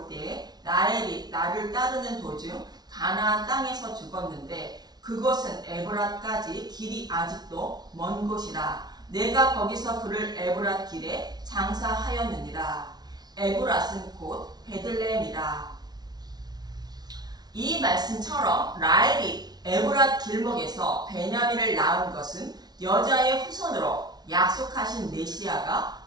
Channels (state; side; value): late; left; 0.19 ms